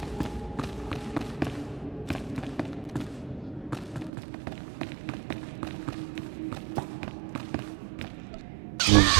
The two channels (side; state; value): left; drops out; at 4.1 s